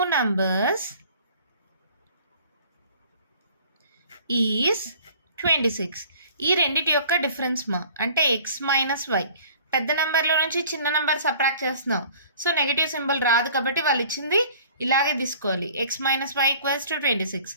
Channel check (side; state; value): both; inverted; correlation -0.50